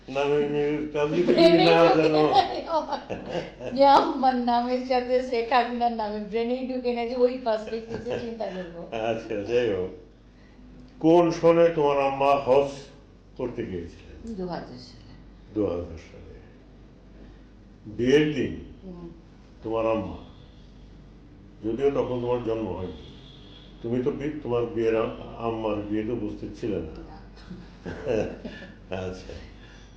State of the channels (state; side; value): identical; both; correlation 1.00